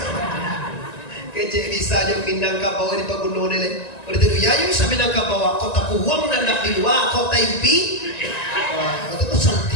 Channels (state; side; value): late; right; 1.9 ms